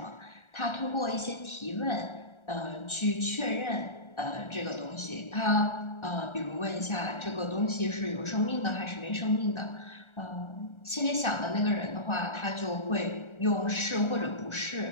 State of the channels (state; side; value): late; right; 1.4 ms